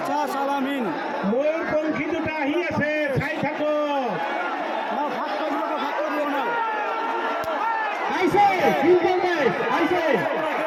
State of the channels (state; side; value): identical; both; correlation 1.00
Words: আলামিন ময়ূর পঙ্খী দুটা আহিয়েছে খাই থাকো আইছে তিনজন দেশ আইছে